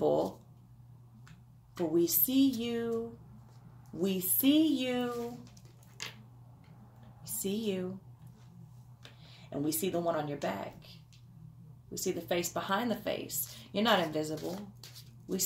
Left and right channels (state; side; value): identical; both; correlation 1.00